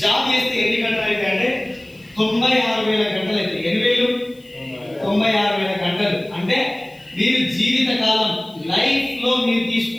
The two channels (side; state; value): left; noise; hiss, 29 dB below the sound